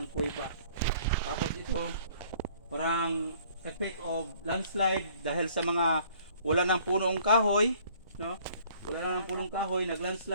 kuweba. Tapos ito, parang effect of landslide dahil sa mga wala ng punong kahoy, no? Wala na ng punong kahoy,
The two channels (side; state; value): both; inverted; correlation -0.57